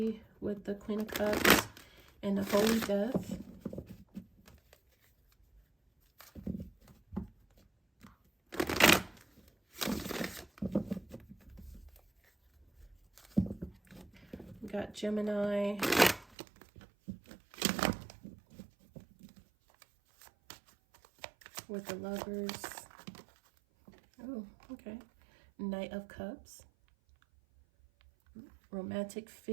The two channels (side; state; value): left; drops out; at 16.4 s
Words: with the Queen of Cups and the Holy Death. We got Gemini. With the Lovers. Oh, okay. Knight of Cups. Romantic